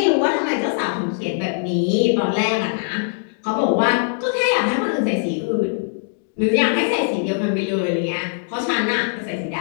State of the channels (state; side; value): silent; right; digital silence